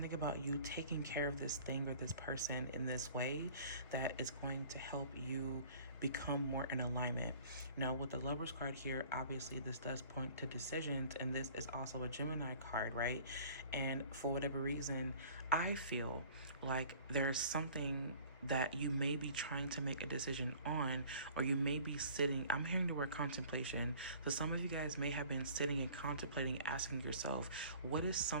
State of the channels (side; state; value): both; inverted; correlation -0.49